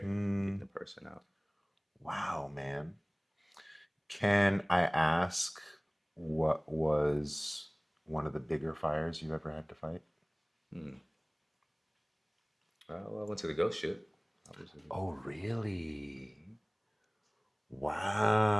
getting Mm, the person out. wow, man. Can I ask what was one of the bigger fires you've ever had to fight? Hmm. Well, I went to the ghost ship. I was Oh, really?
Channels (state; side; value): identical; both; correlation 1.00